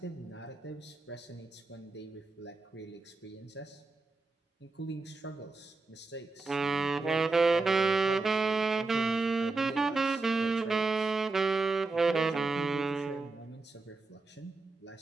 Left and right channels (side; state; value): left; quieter; 3.7 dB